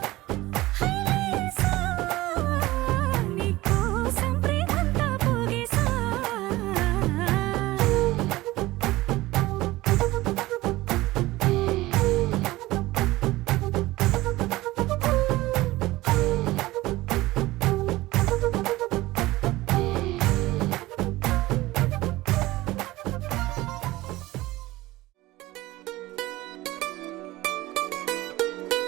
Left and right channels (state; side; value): quieter; left; 18.4 dB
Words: హైలెస్సా నీకోసం ప్రేమంతా పోగేసా